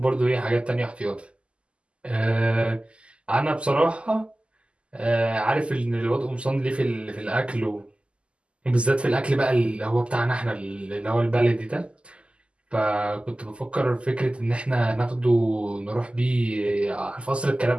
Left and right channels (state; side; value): late; left; 0.054 ms